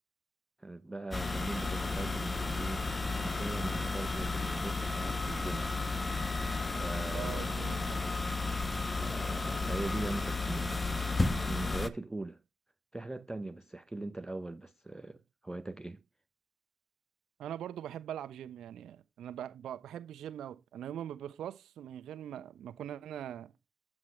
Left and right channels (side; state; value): both; normal; correlation 0.89